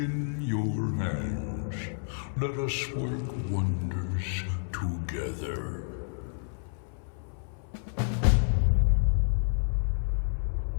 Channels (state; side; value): silent; right; 57 dB below the other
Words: your hands. Let us work wonders together.